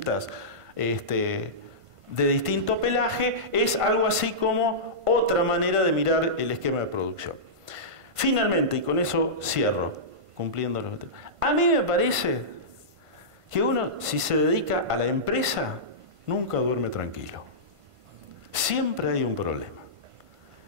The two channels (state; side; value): late; left; 1.5 ms